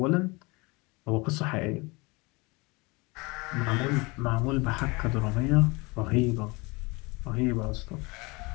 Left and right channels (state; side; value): quieter; right; 25.9 dB